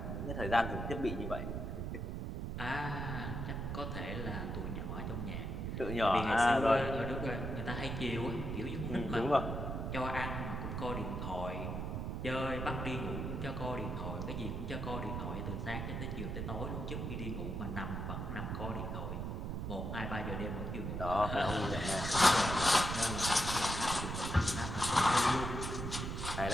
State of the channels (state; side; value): noise; right; rumble, 3 dB below the sound